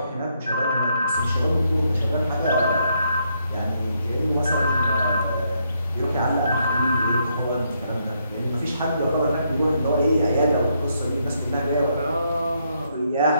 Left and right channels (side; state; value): both; inverted; correlation -0.76